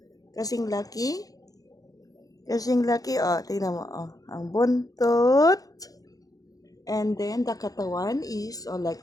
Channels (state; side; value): late; right; 0.17 ms